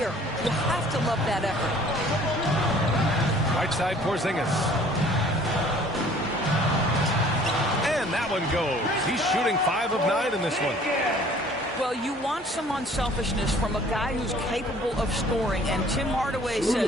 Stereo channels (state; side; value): normal; both; correlation 0.53